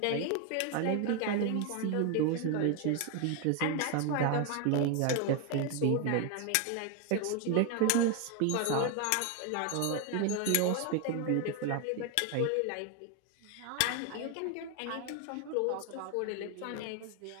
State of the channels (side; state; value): both; different; correlation 0.01